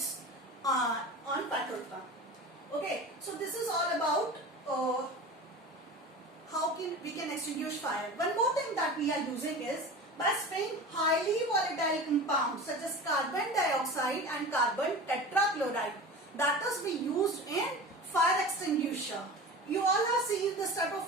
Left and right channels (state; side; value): normal; both; correlation 0.33